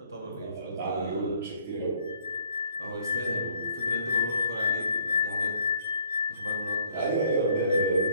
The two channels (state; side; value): inverted; both; correlation -0.62